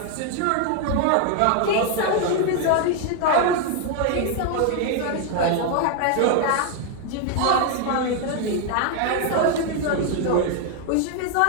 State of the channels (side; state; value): both; different; correlation 0.00